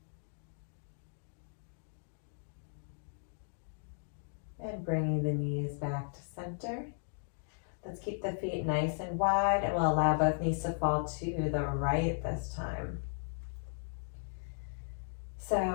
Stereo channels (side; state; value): right; silent; digital silence